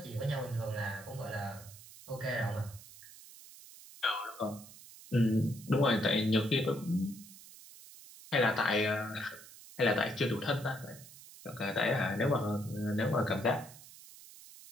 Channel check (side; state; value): right; noise; hiss, 18 dB below the sound